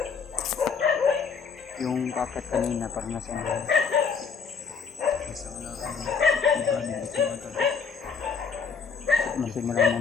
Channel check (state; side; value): quieter; right; 5.8 dB